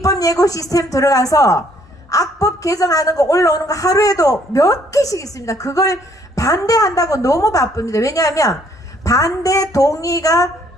예고 시스템 들어가서 악법 개정하는 거 올라오는 거 하루에도 몇 개씩 있습니다. 그걸 반대한다고 너무 바쁩니다. 왜냐하면 반대 동의가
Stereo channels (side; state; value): both; normal; correlation 0.65